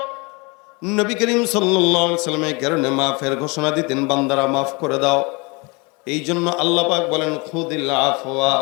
নবী করিম সাল্লাল্লাহু আলাইহি ওয়াসাল্লাম এই কারণে মাফের ঘোষণা দিতেন, বান্দারা মাফ করে দাও। এই জন্য আল্লাহ পাক বলেন খুদিল আফওয়া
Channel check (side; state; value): right; quieter; 28.2 dB